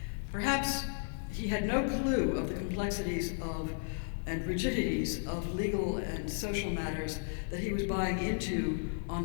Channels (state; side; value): silent; right; 55 dB below the other